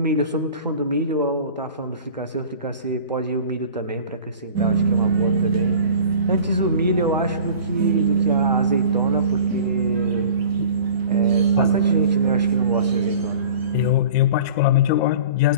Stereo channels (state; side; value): inverted; both; correlation -0.42